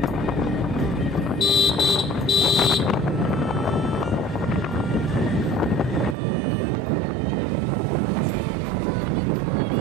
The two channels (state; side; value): drops out; left; at 6.2 s